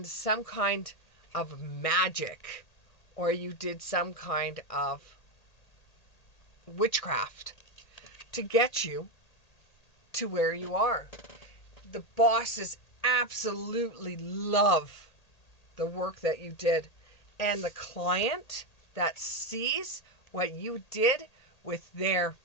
some kind of magic or you did some kind of witchcraft to get you to where you are. The bosses absolutely love the work that you did. And the client that sees what you did with their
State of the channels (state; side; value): late; right; 1.8 ms